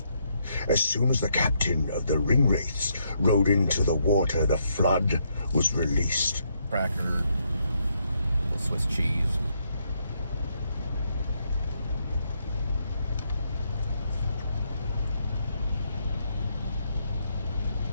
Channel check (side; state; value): both; inverted; correlation -0.76